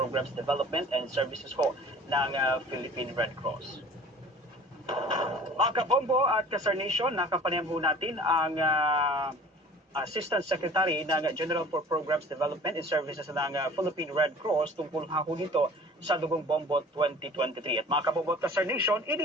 Development and Services po ng Philippine Red Cross. Mga kabombo at kasarnation, nakapanayam ho natin ang Assistant Secretary ng General for Programs Development and Services ng Philippine Red Cross tungkol ho dito sa Dugong Bombo 2023. At mga kabombo at kasarnation,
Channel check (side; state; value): both; normal; correlation 0.46